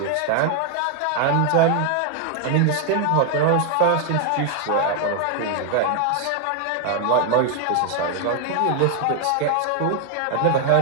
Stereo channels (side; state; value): both; different; correlation 0.00